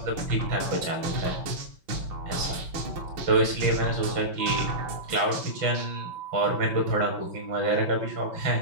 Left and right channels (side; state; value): left; late; 5.9 ms